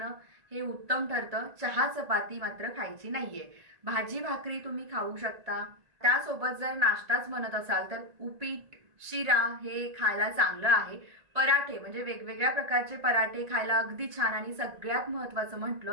हे उत्तम ठरतं। चहा चपाती मात्र खायची नाहीये। भाजी भाकरी तुम्ही खाऊ शकता। त्यासोबत जर नाश्ताच म्हणत असाल तर उपीट शिरा हे खायला चांगलं आहे। पराठे म्हणजे वेगवेगळ्या प्रकारचे पराठे खायला अगदी छान। आणि सगळ्यात महत्त्वाचं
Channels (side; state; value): left; late; 1.7 ms